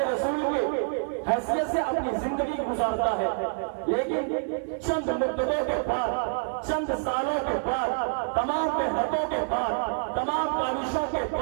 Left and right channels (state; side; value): silent; left; 60 dB below the other